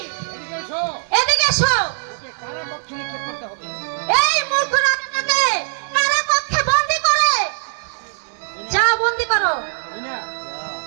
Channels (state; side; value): silent; left; digital silence